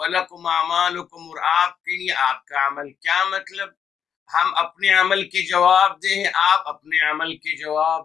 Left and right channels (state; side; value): quieter; right; 7.9 dB